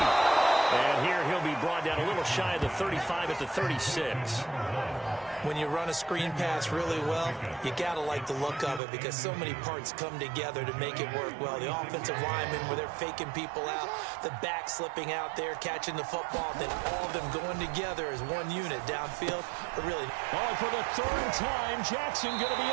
And here he'll be brought down a little shy of the 35 at the 36. When you run a screen pass really well, you got to like the look of it because so many parts come together to make it work well. The offensive linemen, where they're faking people out, the back slipping out there, catching the football, then all of them going together as one unit downfield. But really, for the 3rd time, Jackson going to be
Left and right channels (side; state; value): left; drops out; at 8.8 s